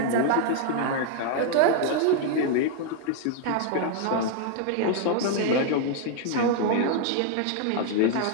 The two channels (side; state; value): both; different; correlation 0.00